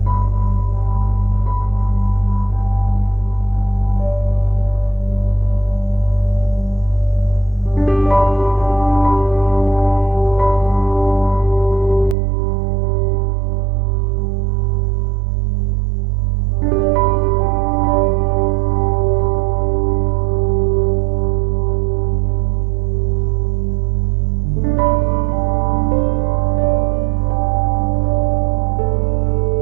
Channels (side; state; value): left; drops out; at 12.2 s